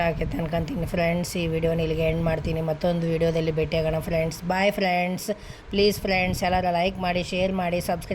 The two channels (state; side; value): identical; both; correlation 1.00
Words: ಆಗೈತೆ ಅನ್ಕೊತೀನಿ ಫ್ರೆಂಡ್ಸ್. ಈ ವಿಡಿಯೋನ ಇಲ್ಲಿಗೆ ಎಂಡ್ ಮಾಡ್ತೀನಿ. ಮತ್ತೊಂದು ವಿಡಿಯೋದಲ್ಲಿ ಭೇಟಿಯಾಗೋಣ friends. Bye friends. Please friends, ಎಲ್ಲರೂ ಲೈಕ್ ಮಾಡಿ, ಶೇರ್ ಮಾಡಿ,